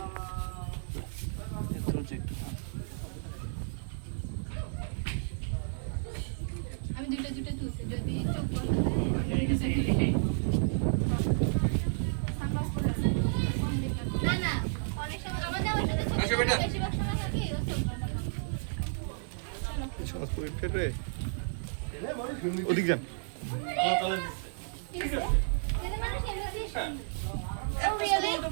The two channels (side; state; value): left; silent; digital silence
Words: একটু একটু আমি দুটো তুলছি যদি চোখ না না অনেক সময় আমাদের বেশিরভাগ সময় থাকে সহজপুরি ফের রে ওদিক যান